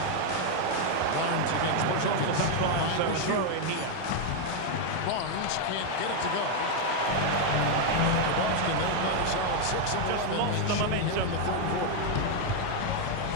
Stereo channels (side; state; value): both; different; correlation 0.01